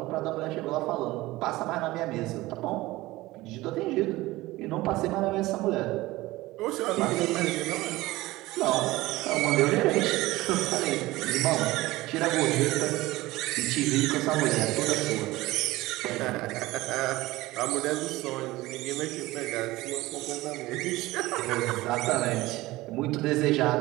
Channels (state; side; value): quieter; left; 18.8 dB